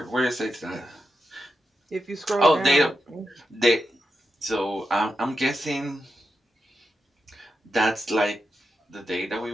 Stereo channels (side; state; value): both; normal; correlation 0.88